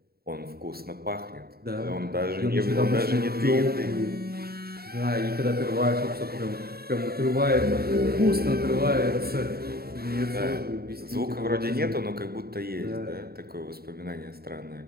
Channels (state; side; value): late; left; 0.45 ms